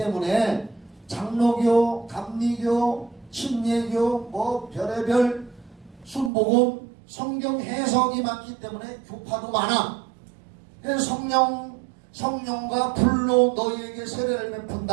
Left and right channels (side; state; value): left; drops out; at 6.3 s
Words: 장로교, 감리교, 침례교, 뭐 별의별 순복음 성경 해석이 많기 때문에 교파도 많아. 그래서 성령과 불로 너희에게 세례를